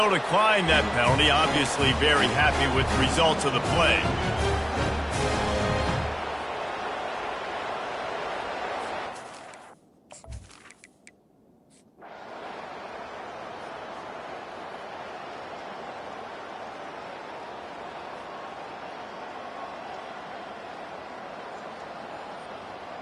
decline that penalty. Obviously very happy with the results of the play.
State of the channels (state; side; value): identical; both; correlation 1.00